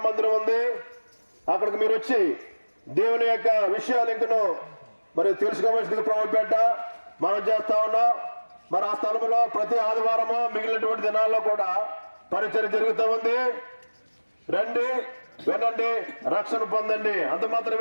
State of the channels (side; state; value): both; inverted; correlation -1.00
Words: మందిరం ఉంది. అక్కడికి మీరు వచ్చి దేవుని యొక్క విషయాలు ఇంకను మరి తెలుసుకోవాల్సింది ప్రభుపేట మనం చేస్తా ఉన్నాం. మరి ఆ స్థలంలో ప్రతి ఆదివారము మిగిలినటువంటి దినాల్లో కూడా పరిచయం జరుగుతూ ఉంది. రండి, వినండి, రక్షణ పొందండి. అంత